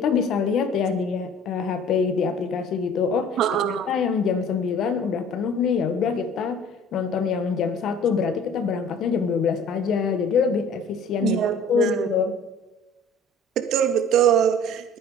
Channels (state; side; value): normal; both; correlation 0.48